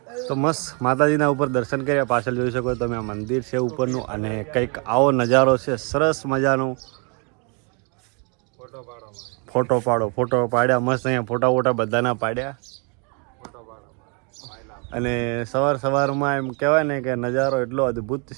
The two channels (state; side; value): quieter; left; 35.0 dB